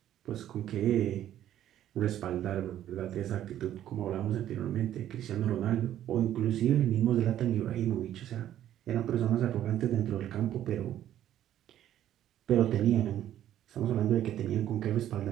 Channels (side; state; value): left; quieter; 11.7 dB